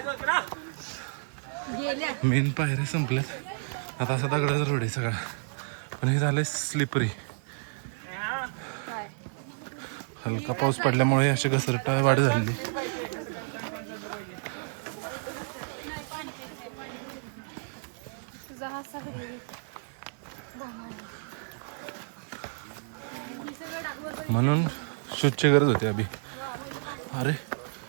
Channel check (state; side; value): silent; left; digital silence